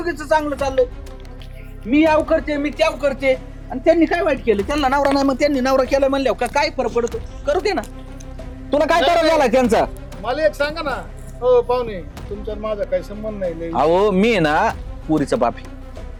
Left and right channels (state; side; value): identical; both; correlation 1.00